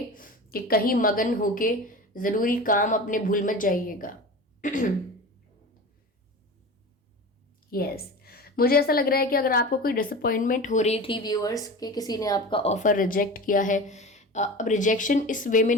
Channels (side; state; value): both; normal; correlation 0.32